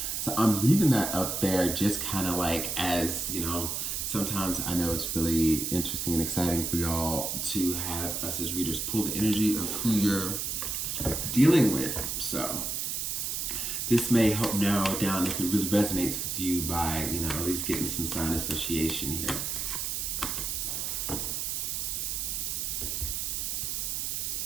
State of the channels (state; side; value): noise; right; hiss, 2 dB below the sound